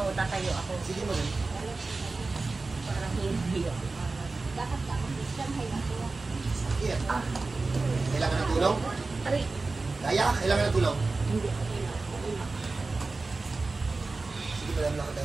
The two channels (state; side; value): quieter; left; 3.7 dB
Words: tatayo ako. Sige madam. Parang hindi ako. Sige. Kailangan ng tulong? Aray. Kaya? Kailangan ng tulong? Hindi. Sige madam,